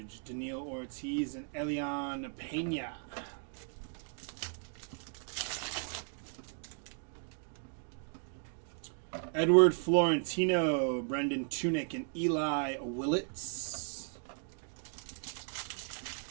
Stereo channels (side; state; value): left; silent; 54 dB below the other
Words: Daniil Ortiz, and Elian Pena. Edward Florentino, Brendan Tunick, and Eli Willits.